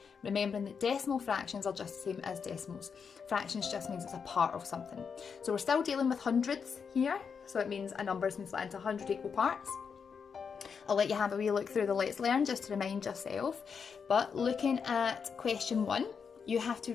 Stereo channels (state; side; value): quieter; right; 6.2 dB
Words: Remembering that decimal fractions are just the same as decimals. Fractions just means it's a part of something. So we're still dealing with hundreds here, so it means a number has been split into 100 equal parts. I'll let you have a wee look through the Let's Learn just to remind yourself. But looking at question 1, you have to